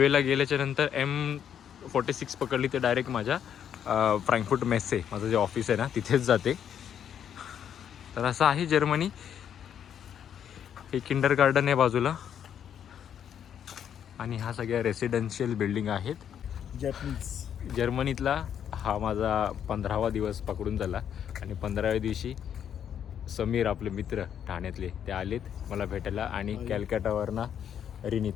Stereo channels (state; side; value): quieter; right; 9.0 dB